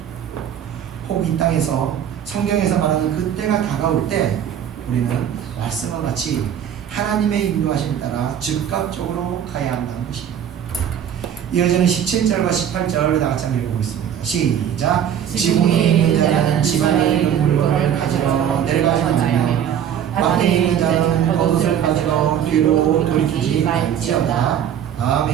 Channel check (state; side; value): quieter; left; 9.4 dB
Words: 혹 이 땅에서 성경에서 말하는 그 때가 다가올 때 우리는 말씀과 같이 하나님의 인도하심에 따라 즉각적으로 가야 한다는 것입니다. 이어지는 17절과 18절 다 같이 한번 읽어보겠습니다. 시작. 지붕에 있는 자는 집안에 있는 물건을 가지러 내려가지 말며 밖에 있는 자는 겉옷을 가지러 뒤로 돌이키지 말지어다.